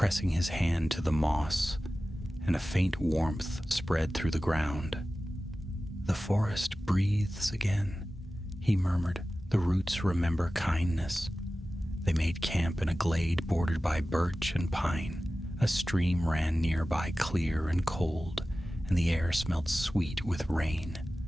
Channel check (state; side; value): normal; both; correlation 0.95